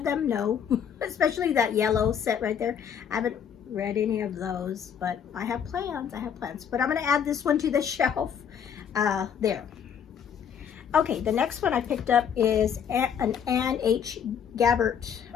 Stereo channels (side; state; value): right; quieter; 7.9 dB